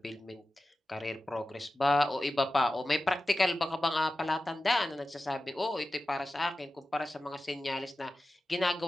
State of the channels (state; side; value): normal; both; correlation 0.94